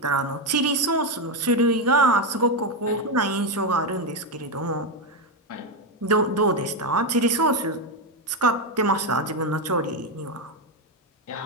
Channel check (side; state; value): both; normal; correlation 0.07